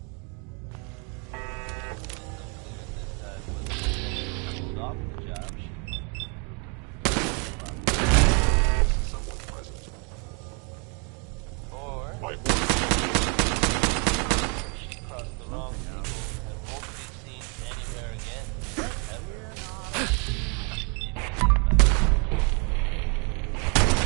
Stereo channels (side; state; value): left; quieter; 35.2 dB